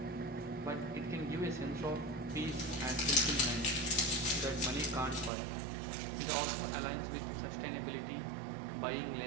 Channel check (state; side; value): drops out; left; at 5.3 s